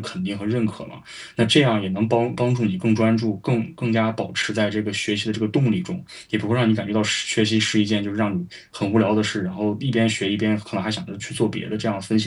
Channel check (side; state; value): both; identical; correlation 1.00